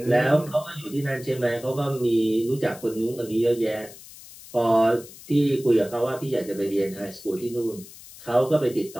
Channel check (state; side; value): noise; left; hiss, 18 dB below the sound